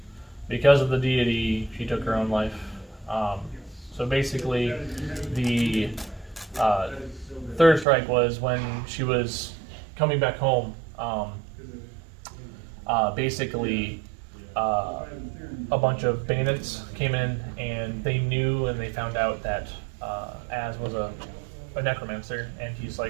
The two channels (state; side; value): drops out; left; at 7.9 s